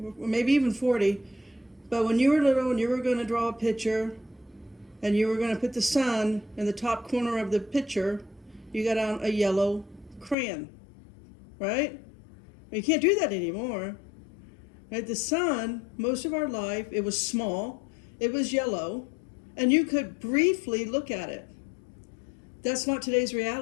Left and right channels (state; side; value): drops out; right; at 10.4 s